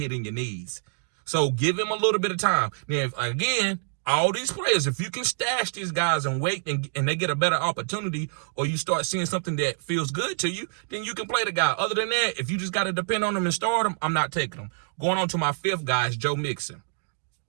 in your knees. So give him a little bit of time. Now, again, all these players, if you can stash these guys and wait and they get a better opportunity, or you start seeing something that feels good to you, then you can play the guy. Other than that, if you just got to depend on them and start them, I'm not taking them. Going on to my fifth guy is Joe Mixon.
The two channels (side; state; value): left; silent; digital silence